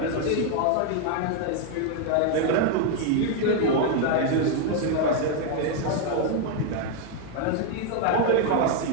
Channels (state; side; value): different; both; correlation 0.00